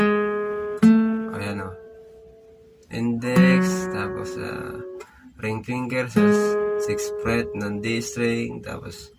Ayan o. Index, tapos ring finger sa 6th fret ng D string, tapos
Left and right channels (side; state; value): both; identical; correlation 1.00